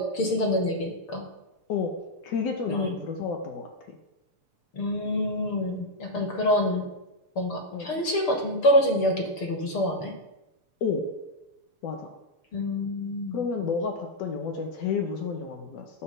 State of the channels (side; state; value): right; late; 6.7 ms